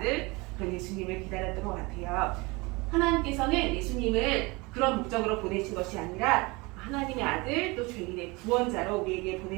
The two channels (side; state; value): left; quieter; 25.2 dB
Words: 그런 예수님을 기다렸던 것 같아요. 하나님께서는 예수님을 그런 목적으로 보내신 것이 아니라 하나님의 아들, 또 죄인의 구원자로 우리에게